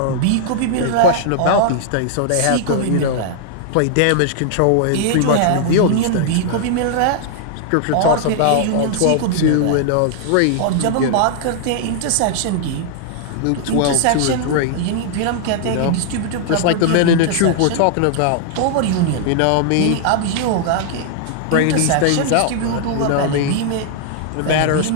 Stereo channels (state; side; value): different; both; correlation -0.01